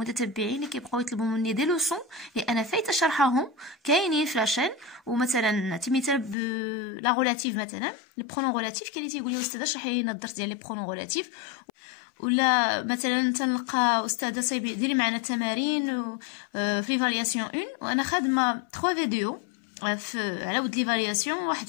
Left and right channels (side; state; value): right; drops out; at 6.4 s